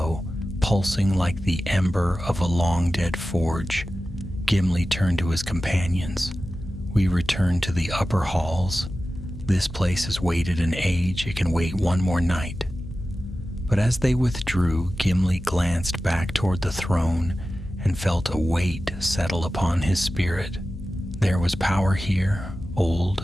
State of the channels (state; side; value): noise; left; hum, 13 dB below the sound